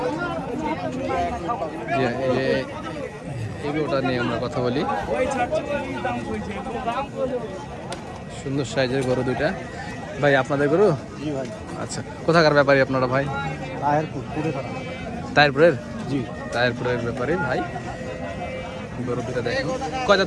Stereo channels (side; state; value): both; identical; correlation 1.00